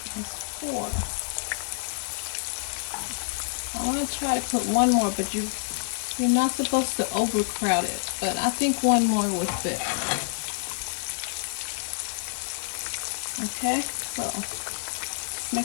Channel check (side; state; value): right; silent; digital silence